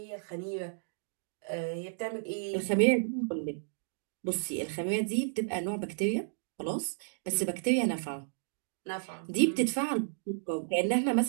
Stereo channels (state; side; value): silent; left; digital silence